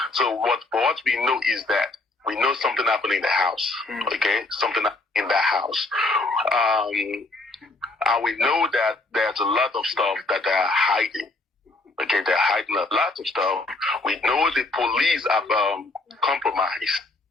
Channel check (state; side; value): quieter; right; 3.1 dB